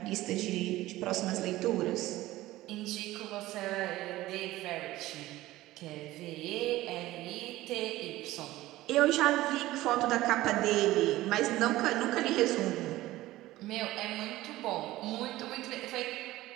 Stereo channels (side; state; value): left; quieter; 16.8 dB